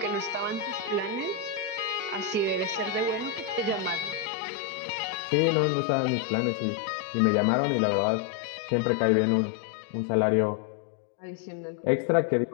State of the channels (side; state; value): right; drops out; at 4.3 s